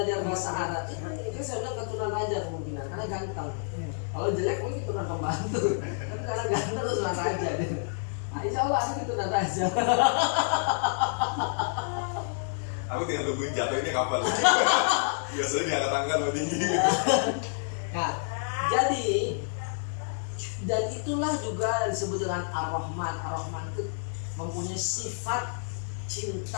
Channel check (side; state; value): right; silent; digital silence